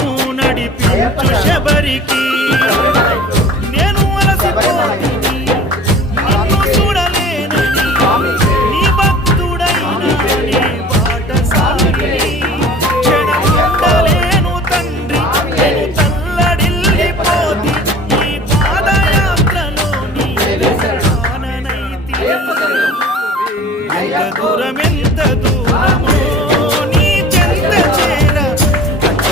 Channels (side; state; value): both; normal; correlation 0.43